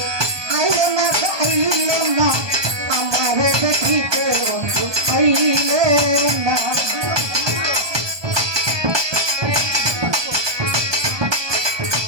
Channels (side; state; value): left; late; 1.2 ms